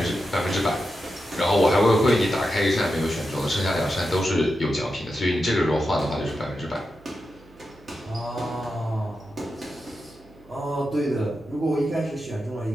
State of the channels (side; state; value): right; noise; hum, 27 dB below the sound